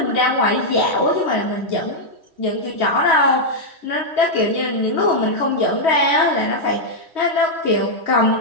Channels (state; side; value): late; left; 3.1 ms